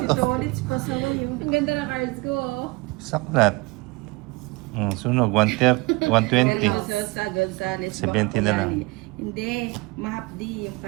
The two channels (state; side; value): quieter; left; 24.9 dB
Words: naman si oh. Tolits. Pasaway yun. Ang ganda ng cards ko, oh. Saklat. Sunog, 120. Gonzales. 70 na lang. Hindi, mahapdi. Yung